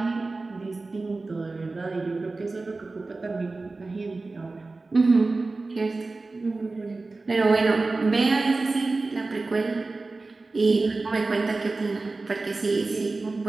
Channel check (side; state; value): left; quieter; 3.5 dB